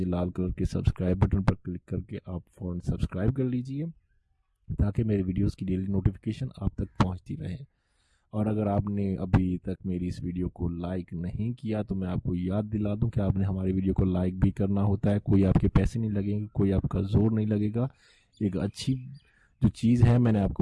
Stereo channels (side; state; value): both; identical; correlation 1.00